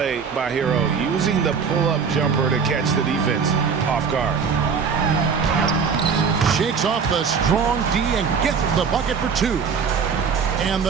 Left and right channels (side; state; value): left; quieter; 6.0 dB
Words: by Hero, using the pull-up jumper to catch the defense off guard. Shakes off the strong D and gets the bucket for 2. And